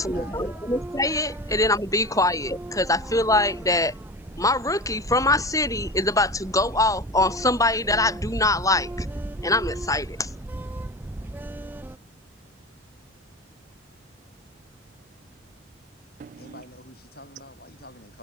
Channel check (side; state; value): both; normal; correlation 0.29